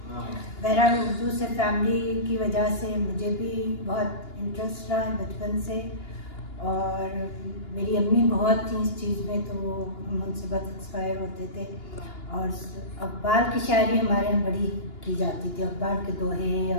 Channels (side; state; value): right; late; 2.9 ms